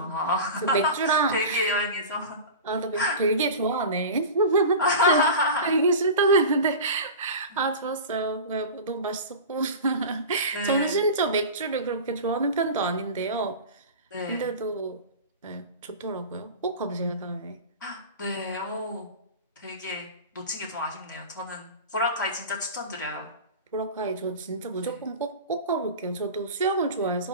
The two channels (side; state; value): both; inverted; correlation -0.31